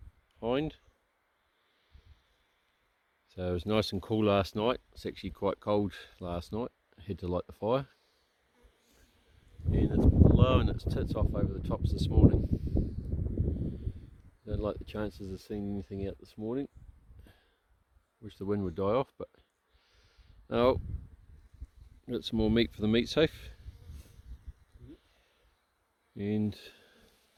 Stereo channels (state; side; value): identical; both; correlation 1.00